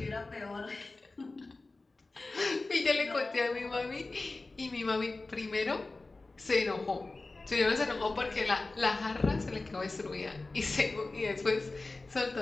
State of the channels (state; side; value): quieter; right; 3.3 dB